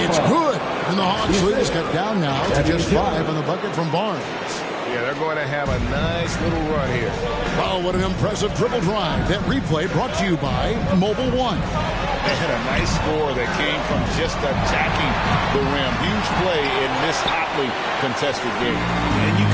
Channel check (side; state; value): both; identical; correlation 1.00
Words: It's good. And the Hawks lead is cut down now to just 5 on the bucket from Barnes. Yeah, they're going to have a nice little run here. Wow, what an impressive dribble drive. That replay brought to you by Mobile One. They had a nice score that came from just attacking the rim. Huge play in this hotly contested game. And you